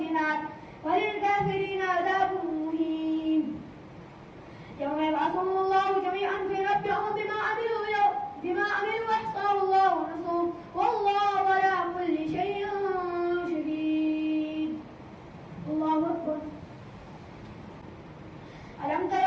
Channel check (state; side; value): identical; both; correlation 1.00